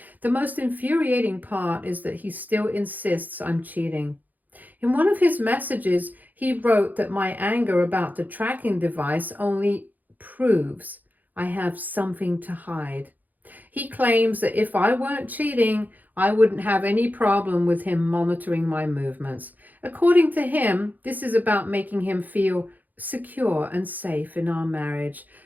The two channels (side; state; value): left; late; 0.083 ms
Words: The most infuriating part is that he still insists I'm cheating. In one of his messages, he wrote that my anger about the tracking device only proves I have something to hide. He claims that if I weren't cheating, I wouldn't have any problem with him monitoring my movements. According to him, this is about making him feel secure and safe in our marriage,